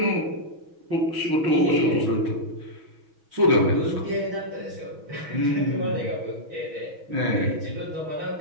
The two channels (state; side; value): late; left; 6.2 ms